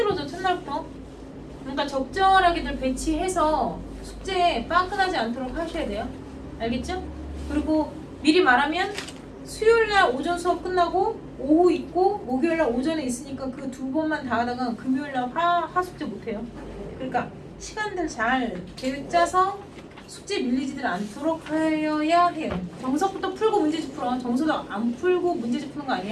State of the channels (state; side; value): identical; both; correlation 1.00